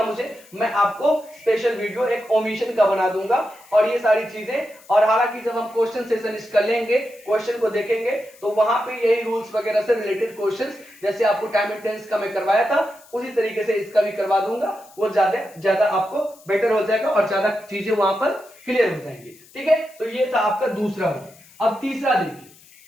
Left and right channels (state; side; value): noise; left; hiss, 25 dB below the sound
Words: मुझे, मैं आपको स्पेशल वीडियो एक ओमिशन का बना दूंगा और ये सारी चीजें। और हालांकि जब हम क्वेश्चन सेशन कर लेंगे, क्वेश्चन को देखेंगे, तो वहां पे यही रूल्स वगैरह से रिलेटेड क्वेश्चंस, जैसे आपको टाइम एंड टेंस का मैं करवाया था उसी तरीके से इसका भी करवा दूंगा, वो ज्यादा आपको बेटर हो जाएगा और ज्यादा चीजें वहां पर क्लियर हो जाएंगी। ठीक है, तो ये था आपका दूसरा रूल। अब तीसरा देखिए,